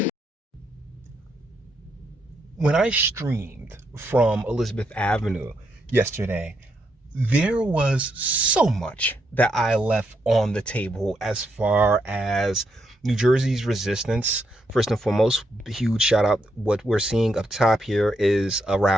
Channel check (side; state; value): both; normal; correlation 0.79